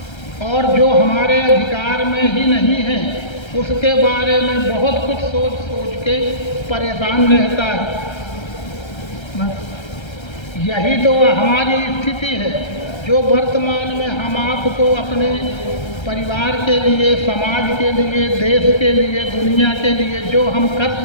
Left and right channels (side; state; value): right; late; 1.3 ms